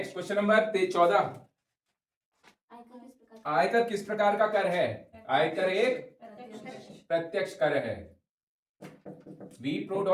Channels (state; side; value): identical; both; correlation 1.00